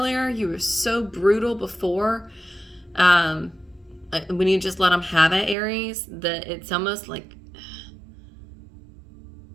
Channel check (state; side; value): drops out; left; at 5.6 s